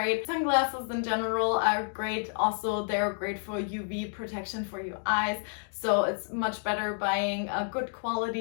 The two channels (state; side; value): silent; right; 58 dB below the other